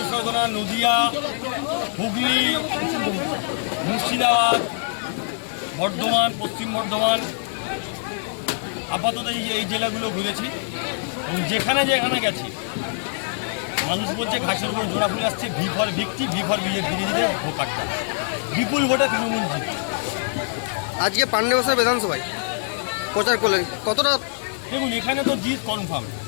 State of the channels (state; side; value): silent; right; digital silence